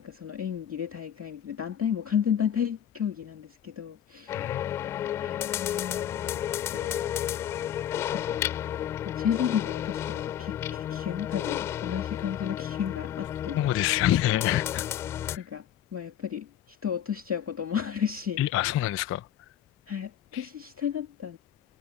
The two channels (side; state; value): right; quieter; 10.2 dB